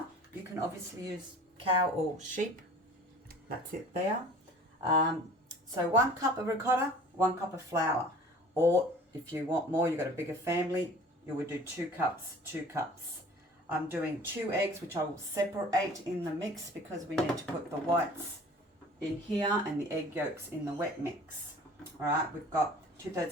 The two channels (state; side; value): normal; both; correlation 0.46